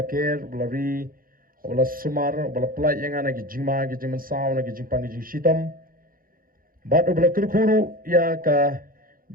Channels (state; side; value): late; left; 0.41 ms